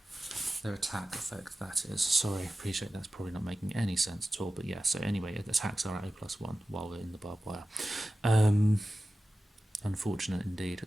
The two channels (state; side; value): normal; both; correlation 0.94